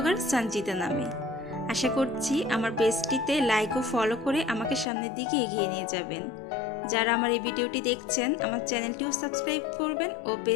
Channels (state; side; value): drops out; right; at 4.9 s